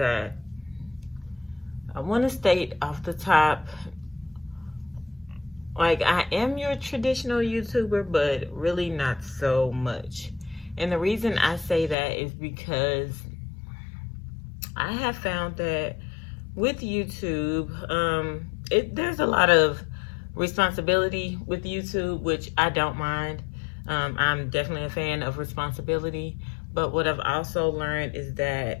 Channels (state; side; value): drops out; right; at 12.0 s